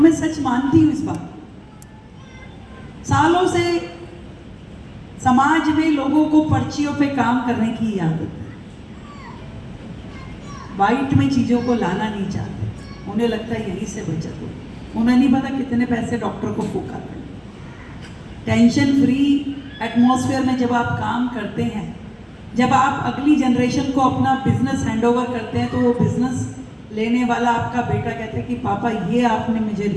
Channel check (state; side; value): identical; both; correlation 1.00